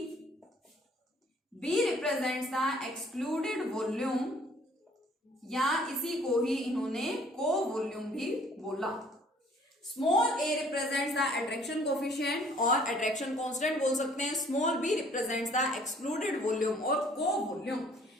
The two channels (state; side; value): normal; both; correlation 0.57